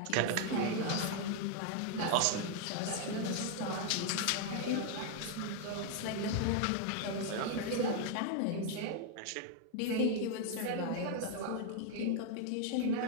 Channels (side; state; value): both; different; correlation 0.00